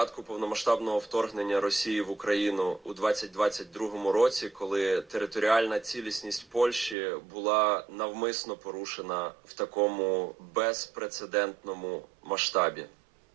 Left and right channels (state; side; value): drops out; left; at 7.0 s